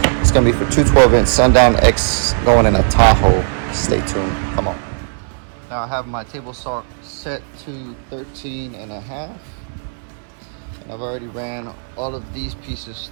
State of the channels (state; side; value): silent; left; digital silence